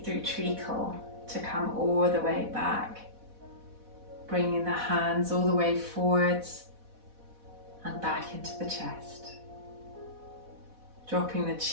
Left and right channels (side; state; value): left; late; 4.1 ms